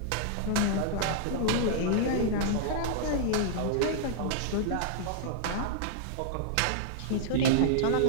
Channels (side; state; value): both; different; correlation -0.02